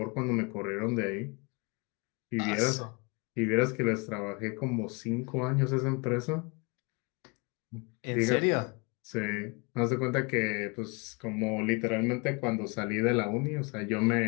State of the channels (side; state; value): right; quieter; 30.2 dB